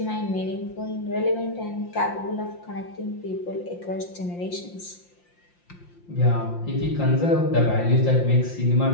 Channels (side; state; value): right; late; 5.7 ms